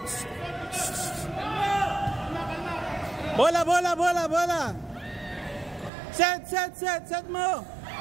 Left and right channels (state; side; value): drops out; left; at 5.9 s